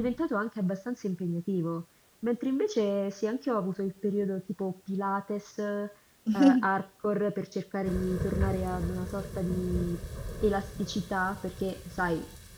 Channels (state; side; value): identical; both; correlation 1.00